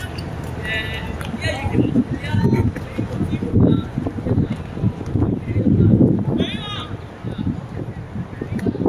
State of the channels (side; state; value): both; identical; correlation 1.00